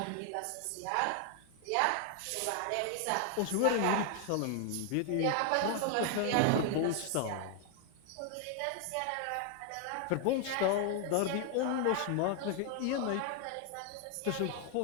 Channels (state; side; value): different; both; correlation 0.00